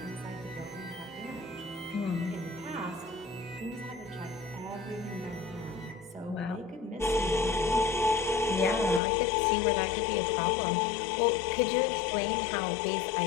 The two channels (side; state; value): right; drops out; at 9.0 s